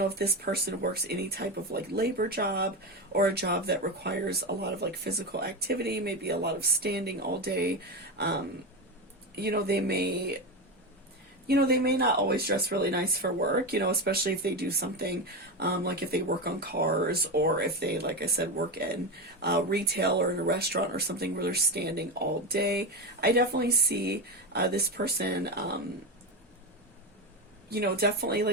if this person works any type of, like, labor job, or a job that requires a lot of, like, physical activity, maybe a lot of standing all day, you know, they may not always dress really nice for work, you know, especially if they do something, like if they work on cars, or if they, like I said, work in retail or in a restaurant or something where they're standing all day. I definitely see this person, you know, definitely,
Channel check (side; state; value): both; normal; correlation 0.16